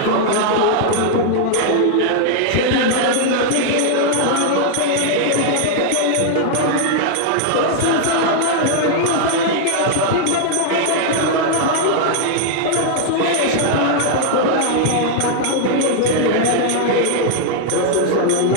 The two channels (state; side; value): different; both; correlation 0.00